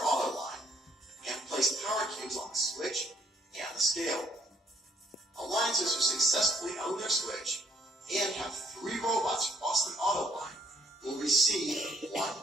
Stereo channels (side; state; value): both; normal; correlation 0.67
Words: auto line and place power cubes on the switch and the scale. Alliances who successfully own their switch and have 3 robots cross the auto line will receive 1